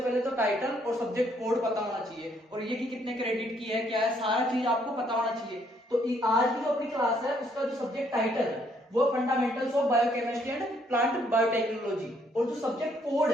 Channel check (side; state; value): both; normal; correlation 0.69